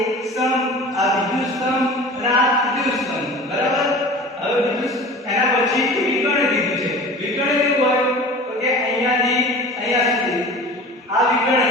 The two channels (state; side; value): normal; both; correlation 0.39